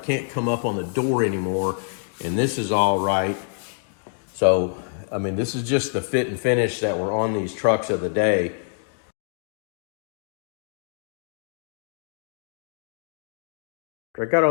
come up on the door anymore, and this is all right. So, I mean, this is just the fit and finish that were on these trucks of the day. I got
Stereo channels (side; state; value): right; silent; digital silence